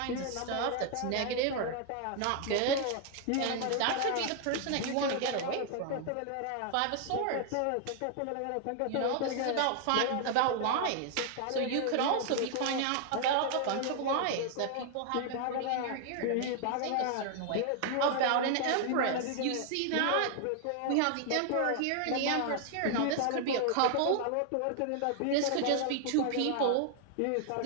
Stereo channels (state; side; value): different; both; correlation 0.00